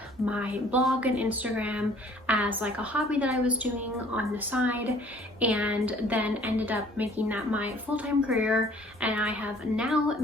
my blog and Instagram as like a hobby that I was doing on the side, and then ended up making that my full-time career. And I have now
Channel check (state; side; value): normal; both; correlation 0.55